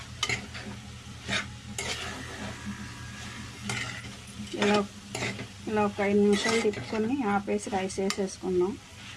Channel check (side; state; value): both; identical; correlation 1.00